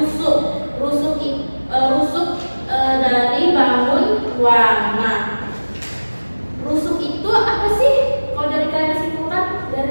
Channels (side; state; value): both; inverted; correlation -1.00